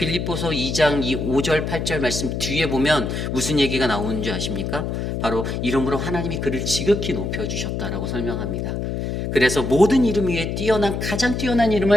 2장 5절 8절 말씀 뒤에 보면 무슨 얘기가 나오는 줄 아십니까? 바로 이러므로 하나님이 그를 지극히 높여주셨다라고 설명합니다. 그래서 모든 이름 위에 가장 뛰어난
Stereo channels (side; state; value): left; noise; hum, 3 dB below the sound